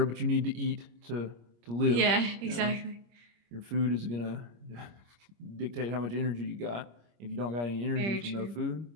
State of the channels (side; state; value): left; late; 25 ms